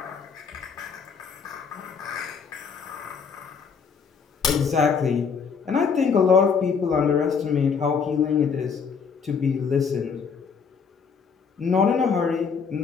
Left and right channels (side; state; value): right; quieter; 5.9 dB